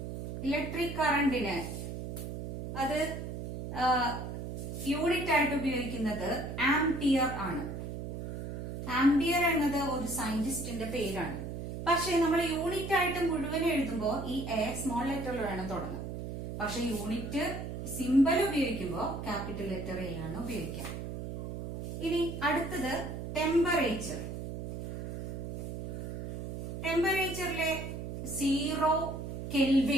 ഇലക്ട്രിക് കറന്റിന് അത് യൂണിറ്റ് ആയിട്ട് ഉപയോഗിക്കുന്നത് ആംപിയർ ആണ്. ആംപിയർ എന്നത് ഒരു സയന്റിസ്റ്റിന്റെ പേരാണ്. പക്ഷെ നമ്മൾ യൂണിറ്റ് ആയിട്ട് മുഴുവൻ എഴുതുമ്പോൾ ഈ എ സ്മോൾ ലെറ്ററിൽ വേണം തുടങ്ങാൻ. പക്ഷെ യൂണിറ്റ് സിമ്പൽ ഉപയോഗിക്കുമ്പോൾ ക്യാപിറ്റൽ ലെറ്റർ എ ആണ് ഉപയോഗിക്കുക. ഇനി അടുത്തത് ടെമ്പറേച്ചർ. ടെമ്പറേച്ചറിലെ 0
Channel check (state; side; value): noise; right; hum, 6 dB below the sound